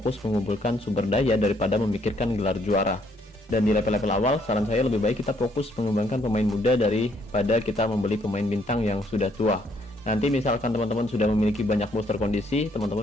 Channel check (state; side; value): normal; both; correlation 0.68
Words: mengumpulkan sumber daya daripada memikirkan gelar juara. Dan di level-level awal saran saya lebih baik kita fokus mengembangkan pemain muda daripada kita membeli pemain bintang yang sudah tua. Nanti misalkan teman-teman sudah memiliki banyak booster kondisi,